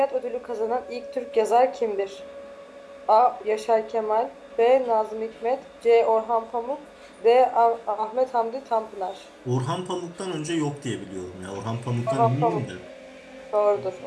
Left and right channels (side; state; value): both; identical; correlation 1.00